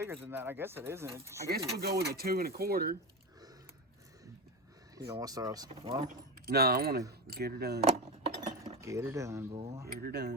than that. I guess it isn't. I guess we'll go with a 2 1/4. You don't want to start off. Well, no, I want to get her done. Get her done, boy. Get her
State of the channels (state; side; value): normal; both; correlation 0.18